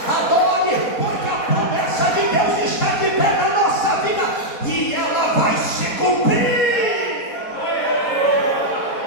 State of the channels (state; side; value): late; right; 4.1 ms